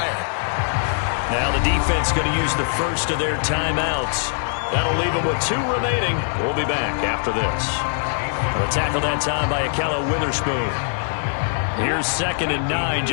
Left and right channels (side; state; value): right; silent; digital silence